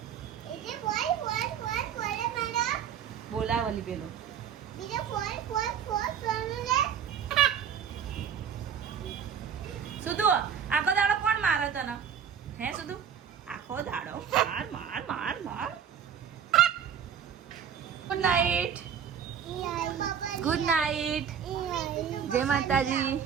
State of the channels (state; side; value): quieter; left; 8.1 dB